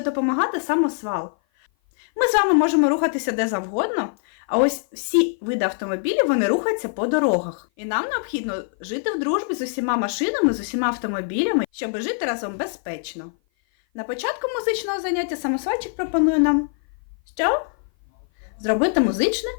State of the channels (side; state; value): right; silent; 56 dB below the other